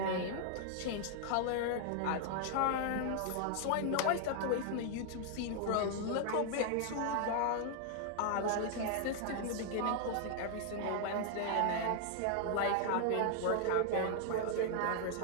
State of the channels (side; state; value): both; different; correlation 0.00